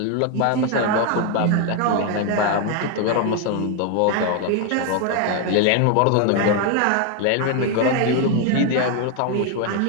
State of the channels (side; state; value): both; different; correlation 0.01